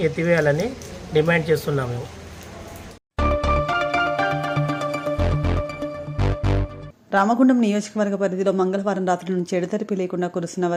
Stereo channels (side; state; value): both; identical; correlation 1.00